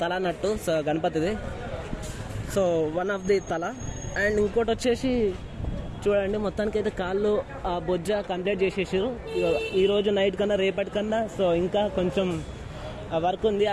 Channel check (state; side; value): identical; both; correlation 1.00